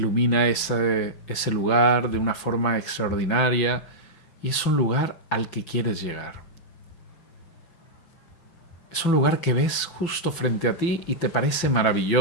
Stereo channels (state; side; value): late; right; 6.0 ms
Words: ese lugar de una forma extraordinaria y es un lugar al que quieres llegar. Es un lugar que ves justo frente a ti y te parece